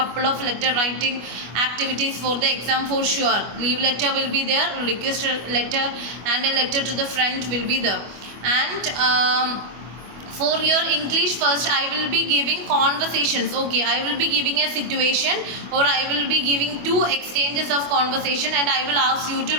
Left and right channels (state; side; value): late; left; 25 ms